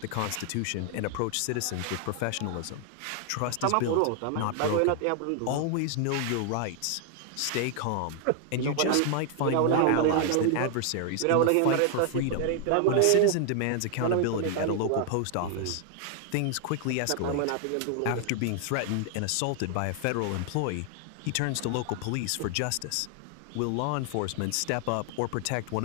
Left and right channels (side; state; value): both; different; correlation 0.00